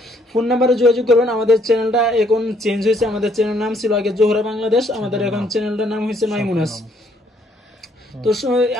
ফোন নাম্বারে যোগাযোগ করবেন। আমাদের চ্যানেলটা এখন চেঞ্জ হয়েছে, আমাদের চ্যানেল নাম ছিল আগে জোহরা বাংলাদেশ, আমাদের এখন চ্যানেলটার নাম হয়েছে মাইমুনাস। তো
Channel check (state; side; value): normal; both; correlation 0.67